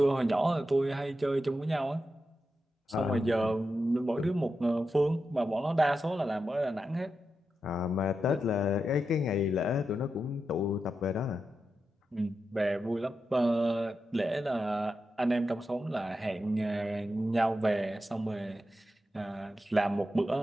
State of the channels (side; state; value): both; normal; correlation 0.88